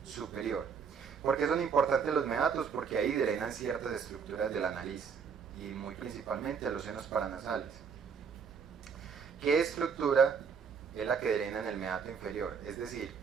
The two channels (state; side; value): quieter; left; 6.3 dB